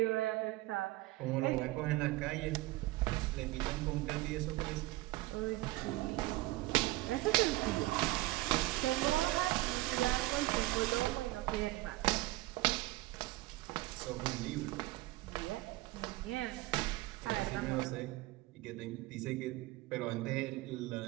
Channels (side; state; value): left; quieter; 19.6 dB